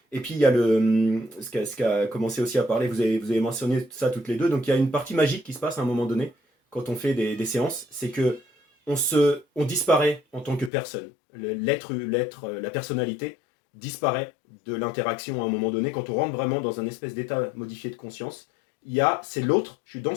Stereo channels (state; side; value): drops out; right; at 10.7 s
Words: Et puis il y a ce qu'a commencé aussi à parler, vous avez mentionné ça toutes les deux, donc il y a une partie magique qui se passe à un moment donné, quand on fait des séances, c'est que on disparaît en tant que personne. La personnalité disparaît de l'interaction à un moment donné. Quand on rentre vraiment dans un espèce d'état modifié de conscience, c'est l'autre, je suis dans